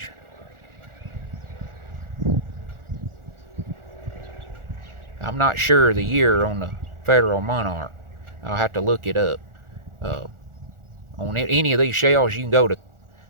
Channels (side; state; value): left; late; 1.4 ms